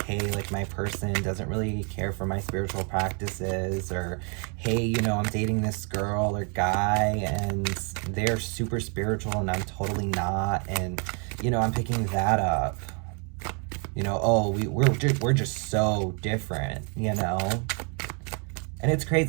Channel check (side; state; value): left; quieter; 37.6 dB